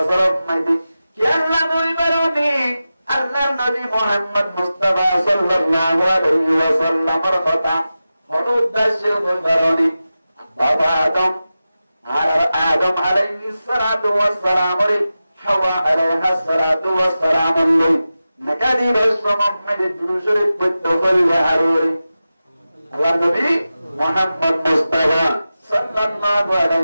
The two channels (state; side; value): inverted; both; correlation -0.93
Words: মাঝে কি আল্লাহ বলবেন আল্লাহর নবী মুহাম্মদ মুস্তাফা সাল্লাল্লাহু আলাইহি ওয়াসাল্লামের কথা হল উদ্দেশ্য বলবারনি বাবা আদম আলাইহিস সালাতু ওয়াস সালাম রে হাওয়া আলাইহিস সালাতু ওয়াস সালাম নকাদি রাসূলুল্লাহ দুরুশরীফ পড়তে হইলে হারুরি আল্লাহর নবী মুহাম্মদ মুস্তাফা সাল্লাল্লাহু